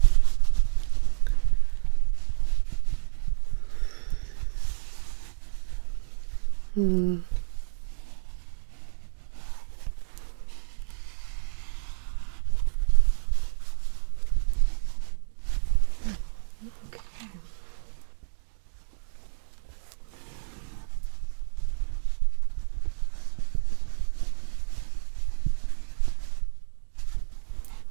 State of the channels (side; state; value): left; silent; digital silence